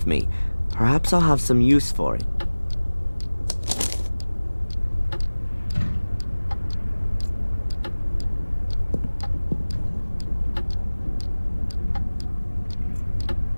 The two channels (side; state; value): both; inverted; correlation -1.00